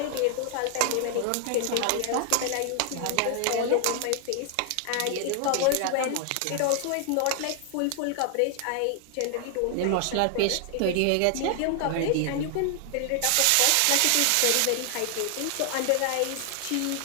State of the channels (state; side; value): different; both; correlation 0.00